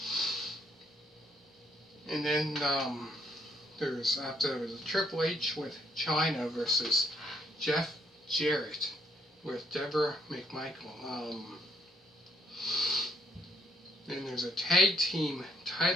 And then there was a Triple H with Chyna versus Jeff Jarrett with Deborah McMichael. Then there's a tag team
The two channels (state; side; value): normal; both; correlation 0.70